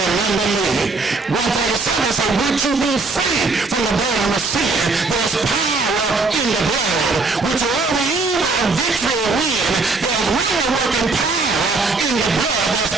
me. 137 said, would you be free from the burden of sin? There's power in the blood, which will over evil and victory win. There's wonder-working power in the blood. There's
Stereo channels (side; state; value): left; quieter; 3.8 dB